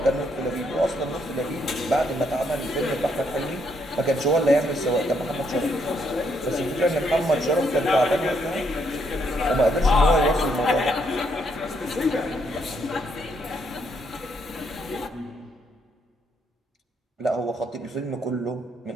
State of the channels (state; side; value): normal; both; correlation 0.74